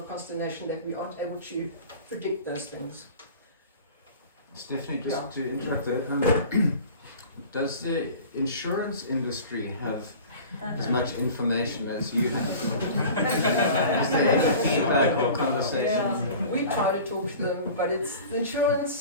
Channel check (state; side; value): inverted; both; correlation -0.40